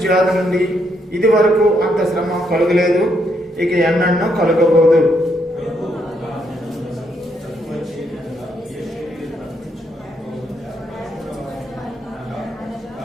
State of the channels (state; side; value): normal; both; correlation 0.75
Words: నుండి ఇది వరకు అంత శ్రమ కలుగలేదు, ఇక ఎన్నడూ కలుగబోదు.